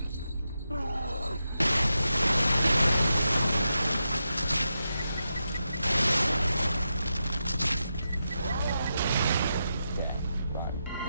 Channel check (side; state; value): both; inverted; correlation -0.87